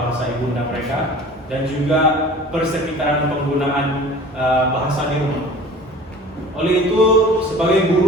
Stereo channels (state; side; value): normal; both; correlation 0.42